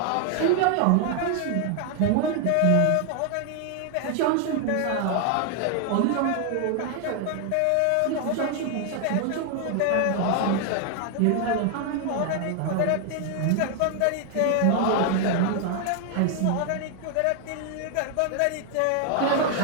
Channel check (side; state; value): both; different; correlation 0.00